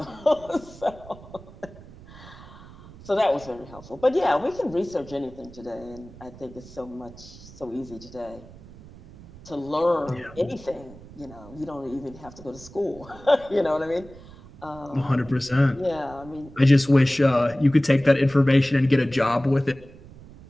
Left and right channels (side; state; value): right; noise; rumble, 19 dB below the sound